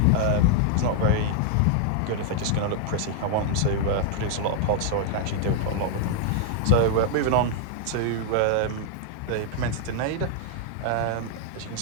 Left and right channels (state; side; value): different; both; correlation 0.00